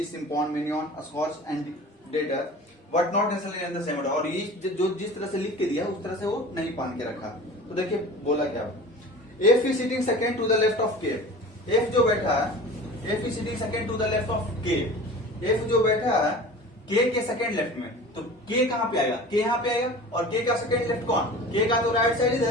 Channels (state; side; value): normal; both; correlation 0.38